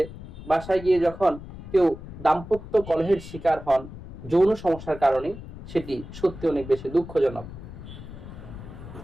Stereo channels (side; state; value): left; noise; rumble, 13 dB below the sound